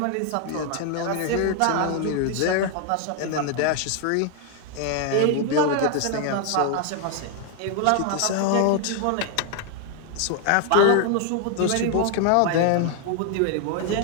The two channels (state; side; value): different; both; correlation 0.00